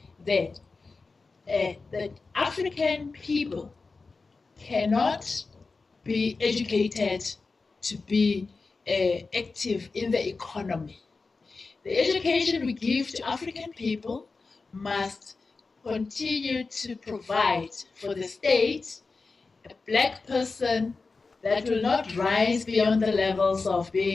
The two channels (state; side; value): quieter; right; 4.1 dB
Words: that African people cannot be educated to be active in the economy. The education we give to African people must continue to provide for the state a black person that will not rise beyond the levels of